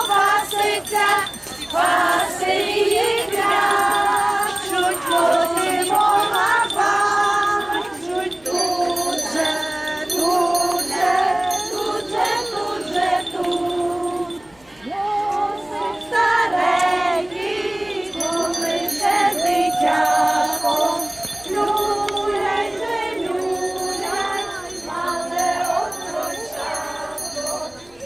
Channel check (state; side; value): noise; left; hum, 30 dB below the sound